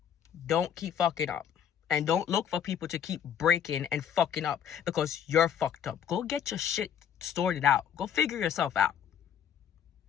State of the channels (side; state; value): right; quieter; 8.8 dB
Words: Don't keep fucking up. And don't look for people to keep breaking and fucking up because you're fucked up. Go get your shit sorted out. Go figure yourself out.